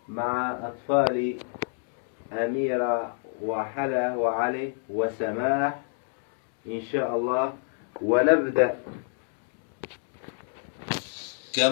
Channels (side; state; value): right; silent; digital silence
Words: مع أطفال أميرة وحلا وعلي وسماح إن شاء الله، ونبدأ